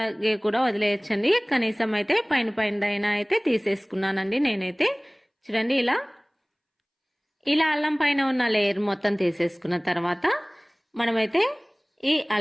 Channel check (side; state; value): both; identical; correlation 1.00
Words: కూడా వదిలేయచ్చండి. కనీసం అయితే పైన పైన అయితే తీసేసుకున్నానండి నేనైతే. చూడండి, ఇలా అల్లం పైన ఉన్న లేయర్ మొత్తం తీసేసుకున్న తర్వాత మనమైతే ఈ